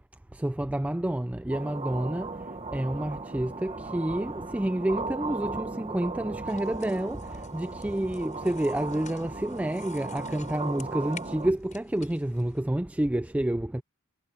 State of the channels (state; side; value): normal; both; correlation 0.89